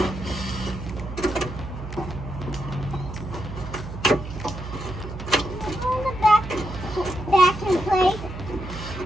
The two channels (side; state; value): right; noise; hum, 9 dB below the sound